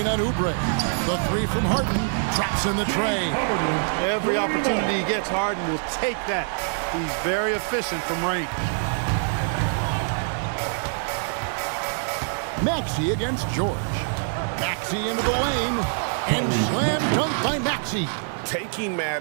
on Oubre. The 3 from Harden, traps in the tray. Every opportunity he gets, Harden will take that. He's very efficient from range. Maxey against George. Maxey into the lane, and slam dunk by Maxey. Taking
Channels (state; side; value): silent; left; digital silence